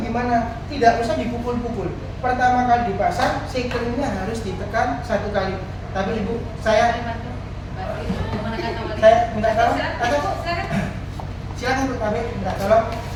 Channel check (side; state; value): both; identical; correlation 1.00